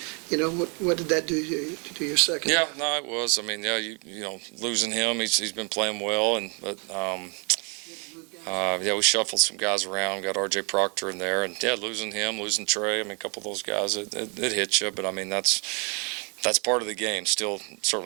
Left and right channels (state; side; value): quieter; left; 35.2 dB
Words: What did that do to your second? Yeah, no, it was. I mean, losing him, he's been playing well, we shuffled some guys around, got R.J. Proctor in there, and losing him, losing Trey. I mean, a couple of those guys, it hits you, but I mean that's part of the game. Still,